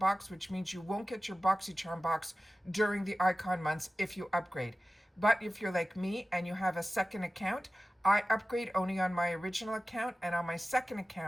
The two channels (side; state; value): both; normal; correlation 0.96